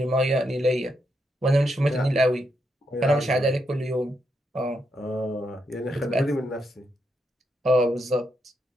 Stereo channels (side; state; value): both; normal; correlation 0.81